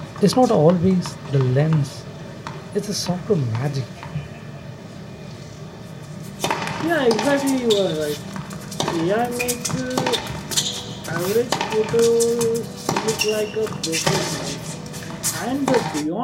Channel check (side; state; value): both; identical; correlation 1.00